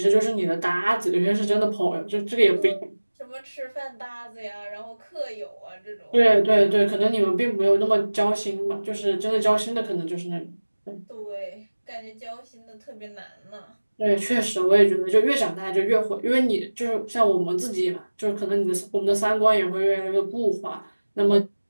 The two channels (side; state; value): both; inverted; correlation -1.00